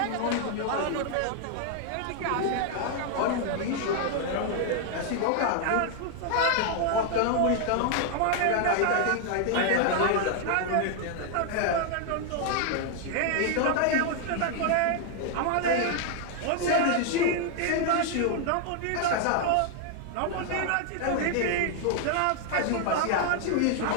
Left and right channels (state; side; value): different; both; correlation 0.00